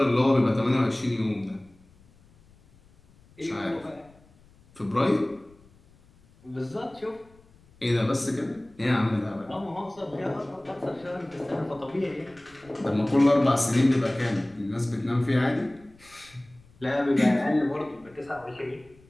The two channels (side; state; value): left; noise; rumble, 28 dB below the sound